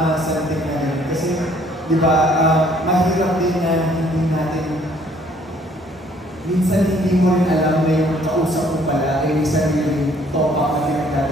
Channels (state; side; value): normal; both; correlation 0.61